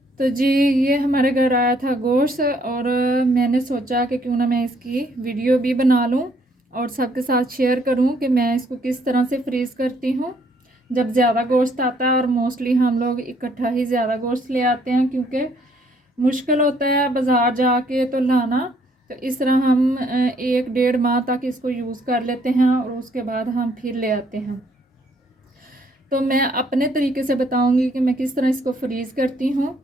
तो जी, ये हमारे घर आया था गोश्त और मैंने सोचा कि क्यों ना मैं इसकी वीडियो भी बना लूँ और सबके साथ शेयर करूँ कि मैं इसको किस तरह से फ्रीज़ करती हूँ जब ज़्यादा गोश्त आता है। और मोस्टली हम लोग इकट्ठा ही ज़्यादा गोश्त ले आते हैं क्योंकि मुश्किल होता है बाज़ार जाके तो लाना। तो इस तरह हम 1-1.5 माह तक इसको यूज़ कर लेते हैं और उसके बाद हम फिर ले आते हैं। तो मैं अपने तरीके से बताऊंगी कि मैं किस तरह इसको फ्रीज़ करती हूँ।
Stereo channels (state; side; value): normal; both; correlation 0.66